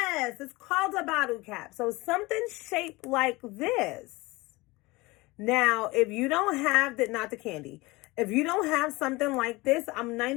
it's called a bottle cap. So something shaped like this. Now, if you don't have that, not the candy. If you don't have something like this, I'm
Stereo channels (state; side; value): quieter; right; 22.4 dB